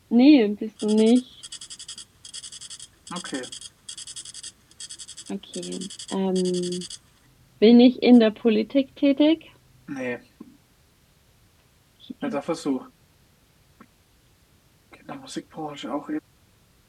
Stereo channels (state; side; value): identical; both; correlation 1.00